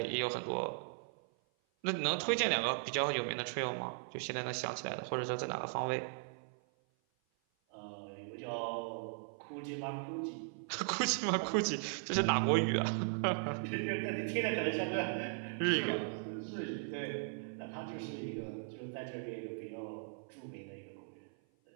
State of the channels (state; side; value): silent; left; 52 dB below the other